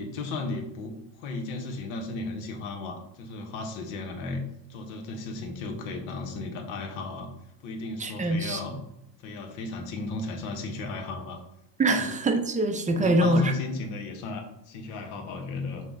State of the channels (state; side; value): normal; both; correlation 0.41